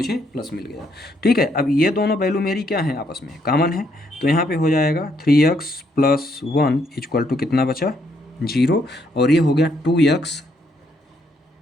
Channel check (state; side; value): normal; both; correlation 0.73